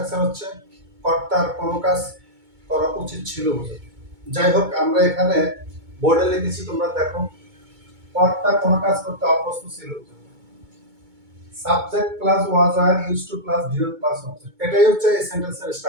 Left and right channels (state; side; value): late; left; 2.2 ms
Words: হচ্ছে কর্তার কোনো কাজ করা উচিত ছিল বোঝাতে। যাই হোক, আমরা এখানে বোর্ডে লিখেছি, তোমরা দেখো। কর্তা কোনো কাজ করতে অভ্যস্ত ছিল বোঝাতে। সাবজেক্ট প্লাস ওয়াজ আর use to plus view plus object, এটাই হচ্ছে এই সেন্টেন্সের